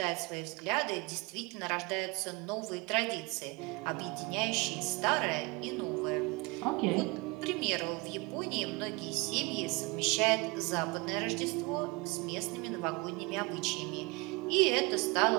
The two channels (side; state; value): left; quieter; 25.8 dB